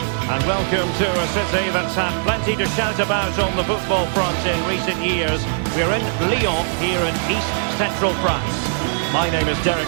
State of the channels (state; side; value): silent; left; digital silence